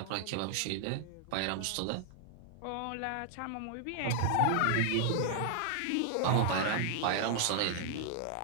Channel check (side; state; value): both; different; correlation 0.00